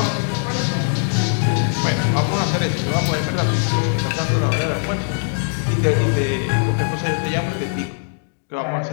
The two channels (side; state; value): right; silent; digital silence